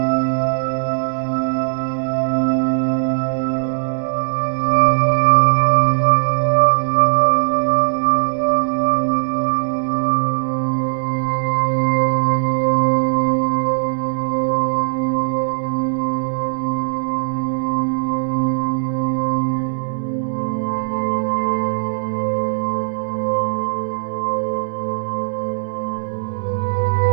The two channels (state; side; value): silent; left; 63 dB below the other